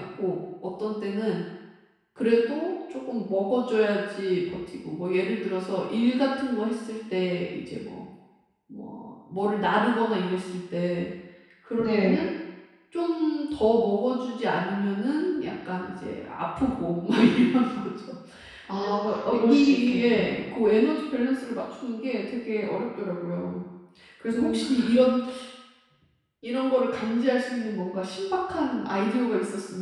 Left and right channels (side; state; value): both; identical; correlation 1.00